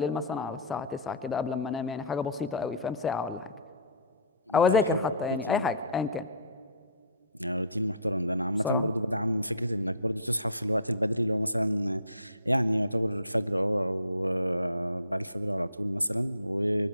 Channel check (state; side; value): inverted; both; correlation -0.40